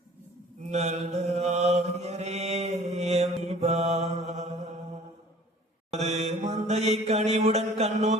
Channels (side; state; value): both; normal; correlation 0.49